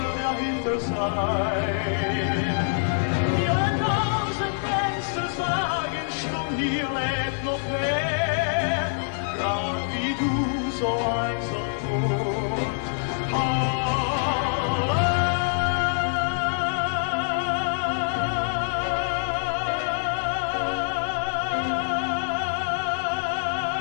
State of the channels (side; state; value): right; silent; 61 dB below the other